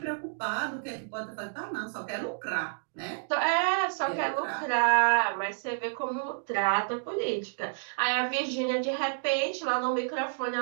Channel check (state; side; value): silent; left; digital silence